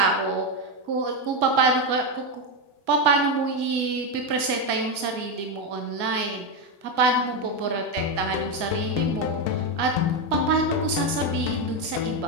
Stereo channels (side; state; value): left; late; 2.0 ms